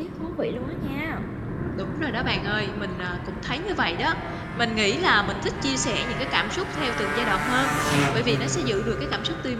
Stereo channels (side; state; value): both; identical; correlation 1.00